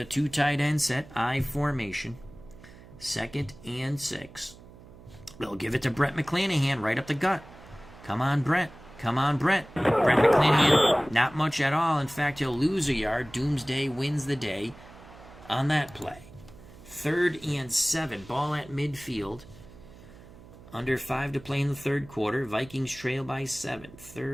2 tight end set. I formation. 2nd and 6. They'll give it to Brett McClanahan right up the gut. Come on, Brett. Come on, Brett. Brett McClanahan, not much at all. In fact, he'll lose a yard. Doomsday wins the day on that play. 3rd and 7. Ball at midfield. Under 5 to play in the third quarter. Vikings trail by 7.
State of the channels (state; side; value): noise; right; hum, 20 dB below the sound